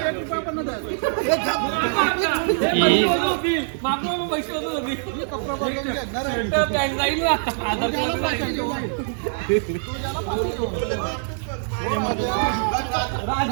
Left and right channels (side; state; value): left; silent; digital silence